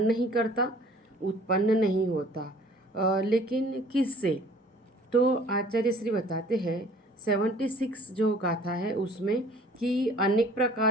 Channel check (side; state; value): both; normal; correlation 0.52